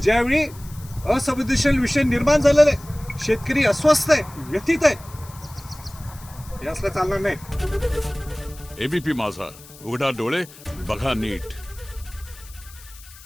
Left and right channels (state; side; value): noise; left; hiss, 20 dB below the sound